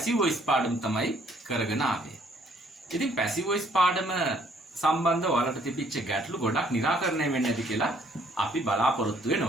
voice පාඩම තමයි කරගෙන ආවේ. ඉතින් passive voice පාඩම සම්බන්ධව ඔයාලට තිබිච්ච ගැටලු ගොඩක් निराකරණය වෙන්න ඇති කියලා අපි බලාපොරොත්තු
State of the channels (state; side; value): normal; both; correlation 0.63